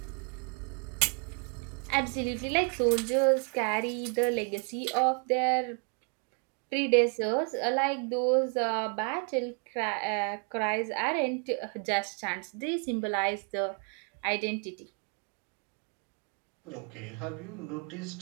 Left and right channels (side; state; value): left; quieter; 37.1 dB